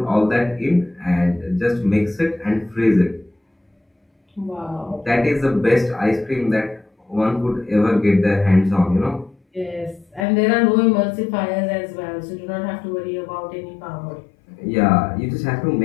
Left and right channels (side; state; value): right; drops out; at 10.2 s